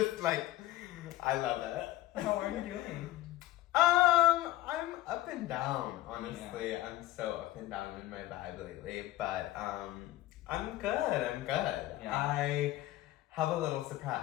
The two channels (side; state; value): right; quieter; 15.7 dB